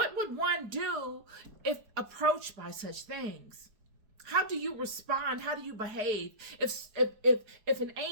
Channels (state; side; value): late; left; 4.9 ms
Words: one do if approached by such things? How do you respond? How do you behave? If an